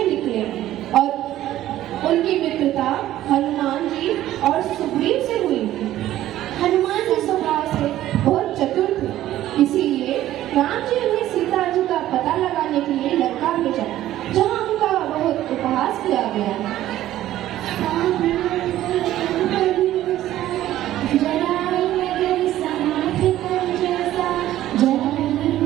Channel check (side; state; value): left; quieter; 13.7 dB